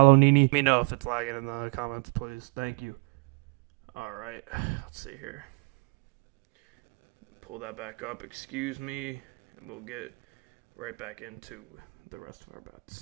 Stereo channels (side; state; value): left; quieter; 33.1 dB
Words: Nini. Let me know if it's lagging in the comments, please. Thank you. All right, let's see here. Pull that back up. Excuse me, and we'll get right back into the rest of our